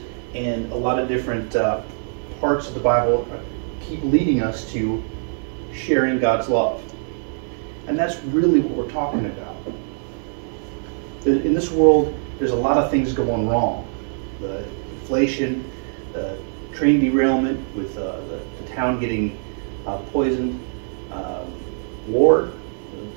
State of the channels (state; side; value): silent; left; 62 dB below the other